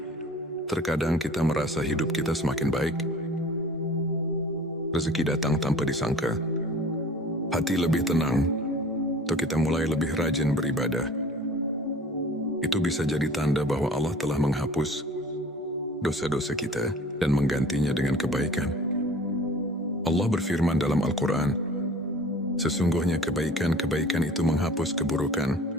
Terkadang kita merasa hidup kita semakin baik. Rezeki datang tanpa disangka. Hati lebih tenang, atau kita mulai lebih rajin beribadah. Itu bisa jadi tanda bahwa Allah telah menghapus dosa-dosa kita dan menggantinya dengan kebaikan. Allah berfirman dalam Al-Quran, sesungguhnya kebaikan-kebaikan itu menghapus keburukan.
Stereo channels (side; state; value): both; normal; correlation 0.45